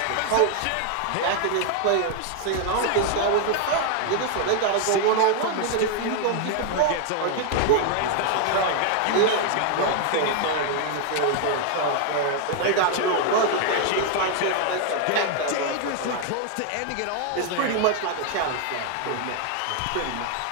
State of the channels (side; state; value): both; different; correlation 0.00